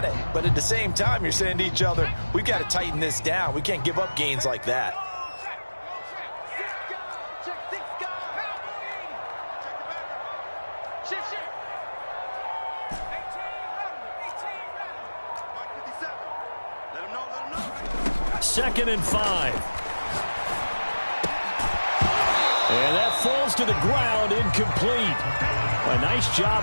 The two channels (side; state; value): both; inverted; correlation -1.00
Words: but at the same time, you're saying to each other, we've got to tighten this down. We can't give up gains like that. Second and 5. And that falls to the ground, incomplete. A nice